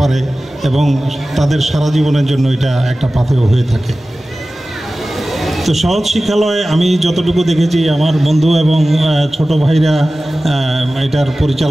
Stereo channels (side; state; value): both; normal; correlation 0.96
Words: পারে এবং তাদের সারা জীবনের জন্য এটা একটা পাথেয় হয়ে থাকে। তো সহজ শিক্ষালয়ে আমি যতটুকু দেখেছি, আমার বন্ধু এবং ছোট ভাইরা এটার